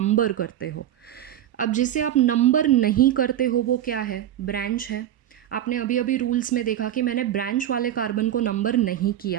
करते हो. अब जिसे आप नंबर नहीं करते हो वो क्या है, ब्रांच है. आपने अभी अभी रूल्स में देखा कि मैंने ब्रांच वाले कार्बन को नंबर नहीं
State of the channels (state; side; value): quieter; left; 11.5 dB